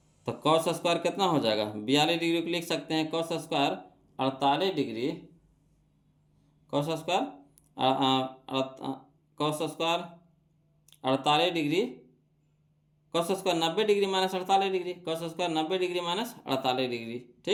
तो कॉस स्क्वायर कितना हो जाएगा 42 डिग्री को लिख सकते हैं cos square 48 degree, cos square cos square 48 degree, cos square 90 degree minus 48 degree, cos square 90 degree minus 48 degree,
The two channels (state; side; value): identical; both; correlation 1.00